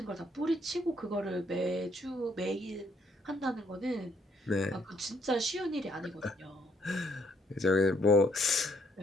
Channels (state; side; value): normal; both; correlation 0.69